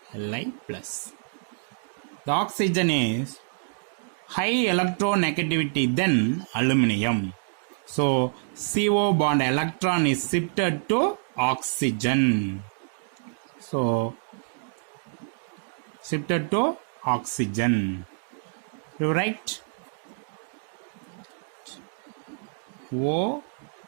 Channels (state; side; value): silent; left; digital silence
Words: Li plus. The oxygen is high electronegativity than aluminium. So CO bond electron is shifted to oxygen. So shifted to oxygen. You write